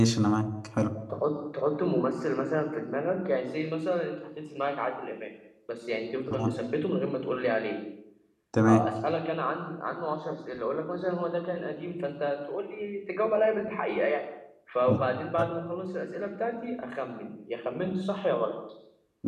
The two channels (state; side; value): identical; both; correlation 1.00